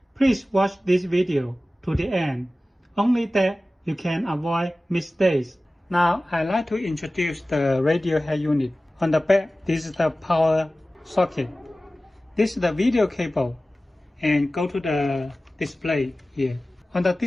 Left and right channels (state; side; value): normal; both; correlation 0.96